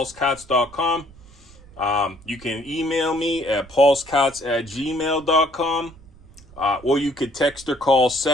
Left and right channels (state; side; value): noise; right; rumble, 23 dB below the sound